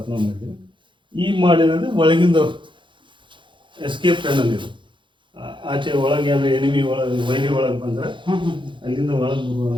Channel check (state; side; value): late; left; 0.23 ms